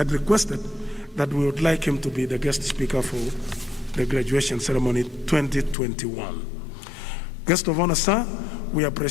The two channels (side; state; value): right; drops out; at 5.8 s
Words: requested that we would like him to be the guest speaker for the graduation ceremony 2021. Guest of honor, sir, we